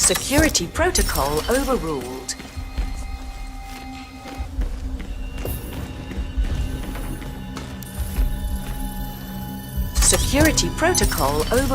protocol overruled. Security protocol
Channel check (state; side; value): identical; both; correlation 1.00